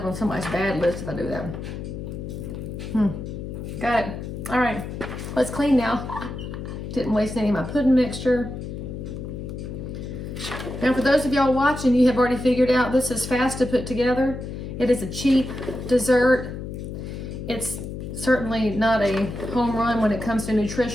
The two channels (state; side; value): noise; left; hum, 7 dB below the sound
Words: on somebody's bad list if I do that. Got it. All right, let's clean now. Didn't waste any of my pudding mixture. Now for those of y'all watching, you have already figured out this is fast to put together. It is a cheap dessert. It's certainly not a home run when it comes to